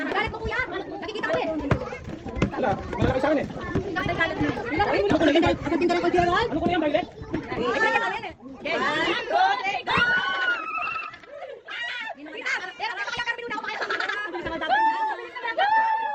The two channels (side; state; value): both; identical; correlation 1.00